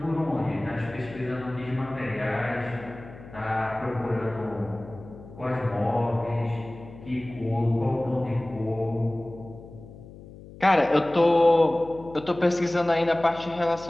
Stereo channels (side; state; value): left; noise; hum, 17 dB below the sound